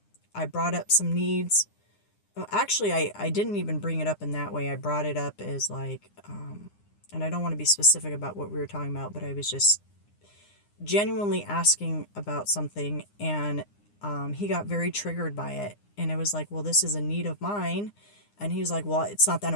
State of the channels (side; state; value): right; late; 9.8 ms